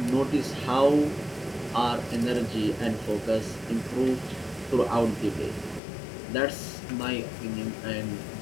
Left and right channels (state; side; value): drops out; right; at 5.8 s